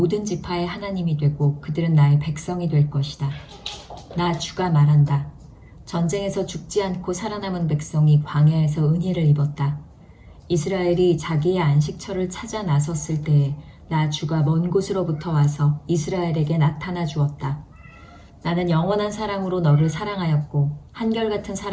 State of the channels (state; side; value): identical; both; correlation 1.00